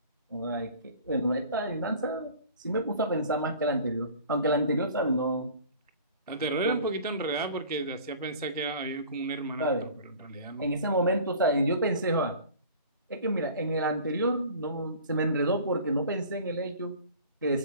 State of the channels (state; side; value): inverted; both; correlation -0.44